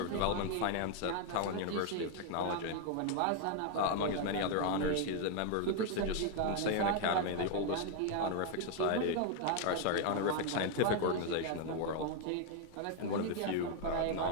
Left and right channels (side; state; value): both; different; correlation 0.00